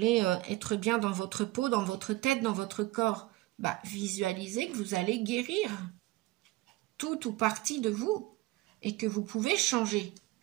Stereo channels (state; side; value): quieter; left; 19.2 dB